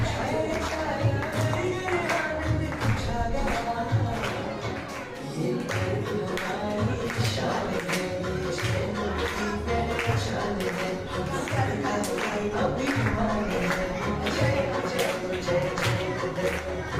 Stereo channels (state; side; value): identical; both; correlation 1.00